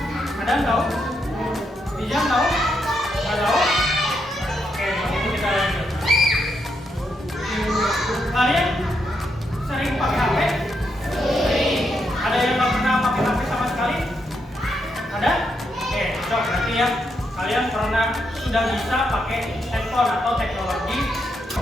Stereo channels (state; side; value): normal; both; correlation 0.80